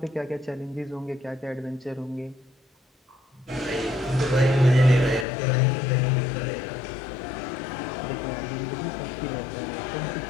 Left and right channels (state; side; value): drops out; right; at 5.2 s